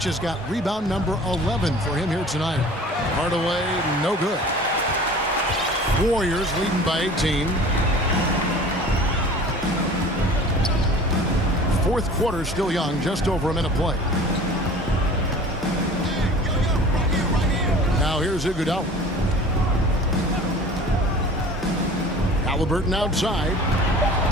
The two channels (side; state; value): both; normal; correlation 0.43